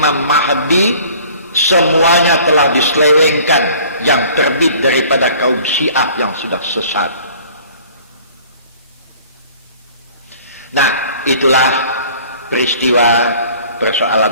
Mahdi semuanya telah diselewengkan yang terbit daripada kaum Syiah yang sudah sesat. Nah, itulah peristiwa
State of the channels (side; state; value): both; inverted; correlation -0.50